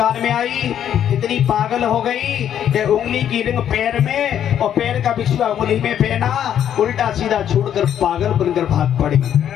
में आई, इतनी पागल हो गई कि उंगली की रिंग पैर में और पैर का बिछुआ उंगली में पहना, उल्टा सीधा छोड़कर पागल बनकर भाग पड़ी।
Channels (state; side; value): quieter; right; 9.8 dB